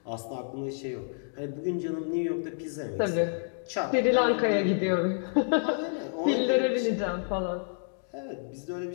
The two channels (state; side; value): silent; right; digital silence